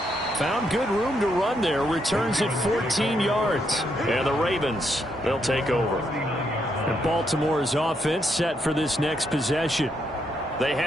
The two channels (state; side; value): normal; both; correlation 0.77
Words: Found good room to run there. Returns at 14 yards. And the Ravens, they'll take over. And Baltimore's offense set for this next possession. They